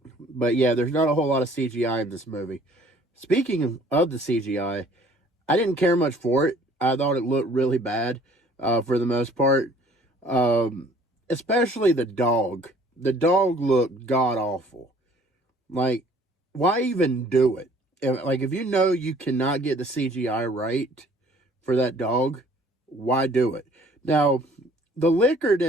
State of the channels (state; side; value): normal; both; correlation 0.56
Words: But yeah, there's not a whole lot of CGI in this movie. Speaking of the CGI, I didn't care much for it. I thought it looked really bad for the most part. Especially the dog. The dog looked god-awful. Like, why even do it? Like, if you know you cannot get the CGI right for that dog, why do it? Now, the liquor